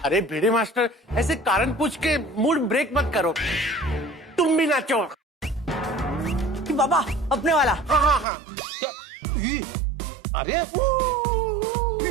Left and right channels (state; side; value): drops out; left; at 8.2 s